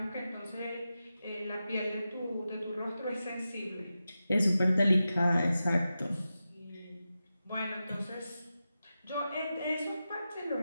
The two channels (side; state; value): both; inverted; correlation -0.92